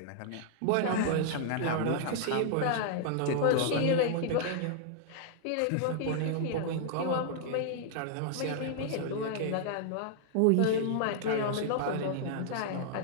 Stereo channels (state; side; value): different; both; correlation -0.01